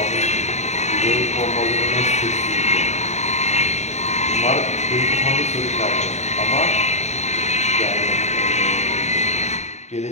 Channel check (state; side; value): late; right; 0.33 ms